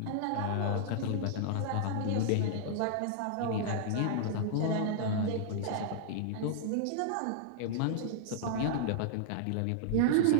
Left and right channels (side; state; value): both; different; correlation -0.01